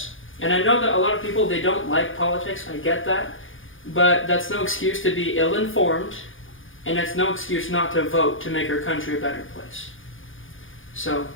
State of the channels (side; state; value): right; late; 0.58 ms